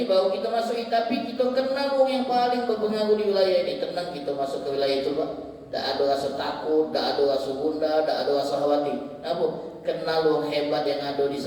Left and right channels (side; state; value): both; identical; correlation 1.00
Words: baru kita masuk, tapi kita kenal wong yang paling berpengaruh di wilayah ini. Tenang kita masuk ke wilayah itu Pak. Tak ada rasa takut, tak ada rasa gundah, tak ada rasa khawatir. Kenapa? Kenal wong hebat yang ada di